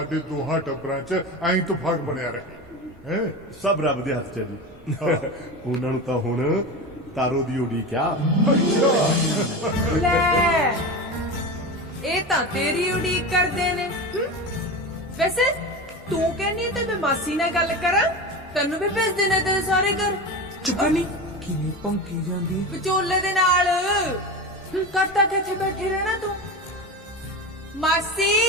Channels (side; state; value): both; normal; correlation 0.25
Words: ਦੋਹਾਂ ਟੱਬਰਾਂ 'ਚ ਐਂ ਇਤਫਾਕ ਬਣਿਆ ਰਹੇ। ਸਭ ਰੱਬ ਦੇ ਹੱਥ 'ਚ ਹੈ ਜੀ। ਉਹਨਾਂ ਨੂੰ ਤਾਂ ਹੁਣ ਤਾਰੋ ਦੀ ਉਡੀਕ ਆ। ਲੈ, ਇਹ ਤਾਂ ਤੇਰੀ ਉਡੀਕ ਕਰਦੇ ਨੇ। ਵੈਸੇ ਤੂੰ ਕਹਿੰਦੀ ਤੇ ਮੈਂ ਮਾਸੀ ਨਾਲ ਗੱਲ ਕਰਾਂ, ਤੈਨੂੰ ਵੀ ਭੇਜ ਦੇਣਾ ਤੇਰੇ ਸਾਰੇ ਘਰ। ਚੁਗਣੀ ਕਿਵੇਂ ਭੌਂਕੀ ਜਾਂਦੀ ਹੈ? ਵਿਚੋਲੇ ਦੇ ਨਾਲ ਕਰਤਾ ਕਿੱਥੇ ਬੈਠੇ ਰਹਿਣਾ ਤੂੰ? ਮਾਸੀ